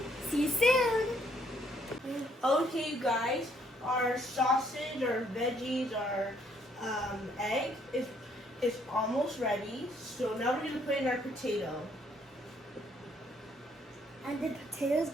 See you soon. Okay, you guys. Our sausage, our veggies, our egg is almost ready. So now we're gonna put in our potato. And the potatoes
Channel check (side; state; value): both; normal; correlation 0.68